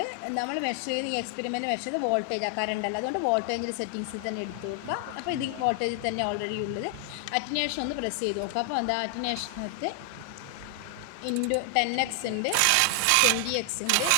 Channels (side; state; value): both; different; correlation 0.00